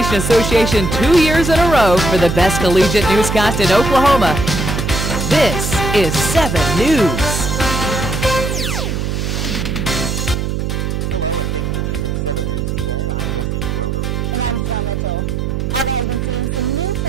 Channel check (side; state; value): right; noise; hum, 2 dB below the sound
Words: Association 2 years in a row for the best collegiate newscast in Oklahoma. This is 7 News. Hello, and thank you for choosing 7 News today. I'm Jesse Schroeder. And I'm Janelle Mitchell. Alva has been seeing some new